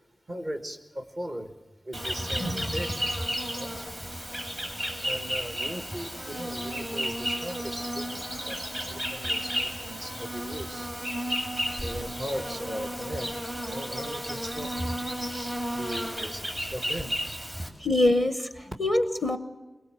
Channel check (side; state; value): both; normal; correlation 0.91